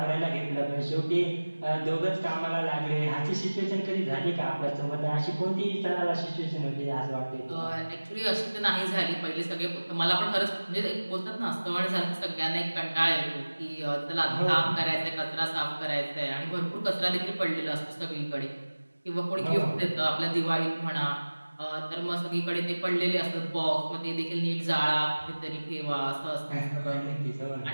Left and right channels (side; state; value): both; inverted; correlation -1.00